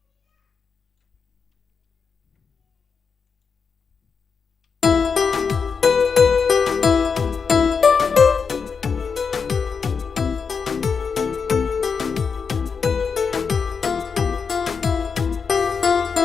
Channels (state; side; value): quieter; right; 5.7 dB